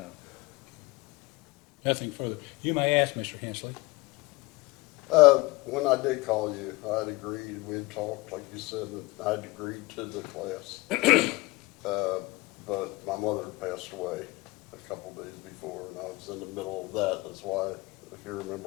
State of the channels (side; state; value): right; quieter; 22.8 dB